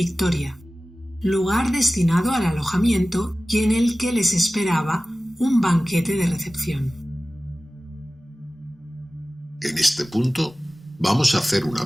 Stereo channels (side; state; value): both; normal; correlation 0.97